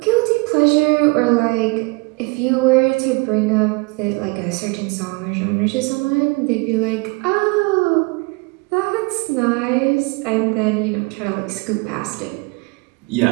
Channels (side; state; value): left; quieter; 28.4 dB